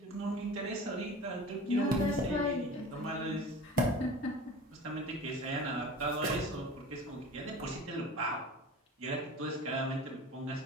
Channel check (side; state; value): both; normal; correlation 0.37